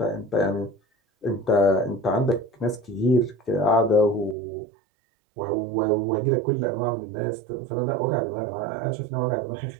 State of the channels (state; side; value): drops out; left; at 4.4 s